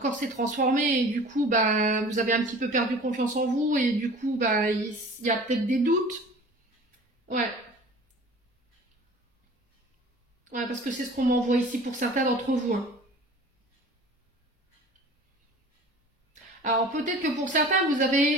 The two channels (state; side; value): normal; both; correlation 0.43